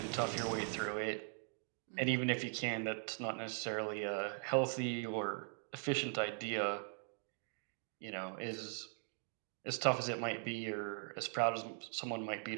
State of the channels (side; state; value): left; silent; 50 dB below the other